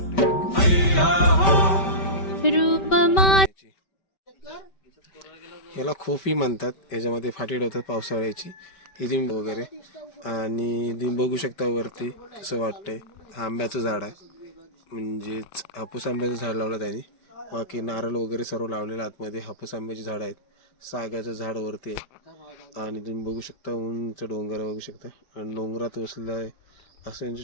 हैया हो रूप माझे याला खोफी म्हणतात. याच्यामध्ये फाटी ठेवतात पावसाळ्याची ही तुम्ही वगैरे. आणि तुम्ही बघू शकता वरती कसं वाटतंय. हा आंब्याचं झाड आहे, म्हणजेच हापूस आंब्याचं झाड लावलं त्याने. बाकी नारळ वगैरे सर्व लावलेलं आतमध्ये. हापूस आंब्याची झाडं आहेत, सागाचं झाड वरती आहे. आणि तुम्ही बघू शकता उंच डोंगर बघू शकता. आणि डोंगरात वसलेलं आहे असं यांचं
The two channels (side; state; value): right; late; 5.2 ms